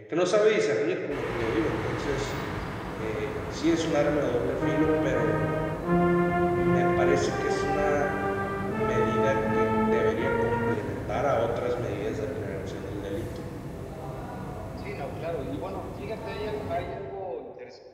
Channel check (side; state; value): both; identical; correlation 1.00